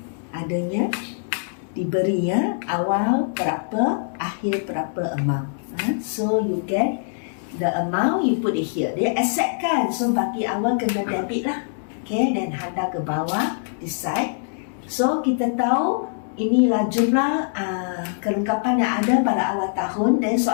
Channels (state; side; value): silent; right; 63 dB below the other